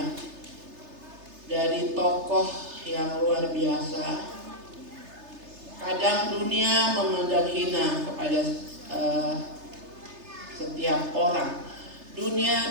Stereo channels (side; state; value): left; late; 3.3 ms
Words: dari tokoh yang luar biasa. Kadang dunia memandang hina kepada setiap orang.